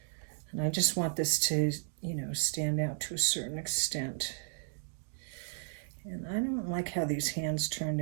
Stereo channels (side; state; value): left; silent; digital silence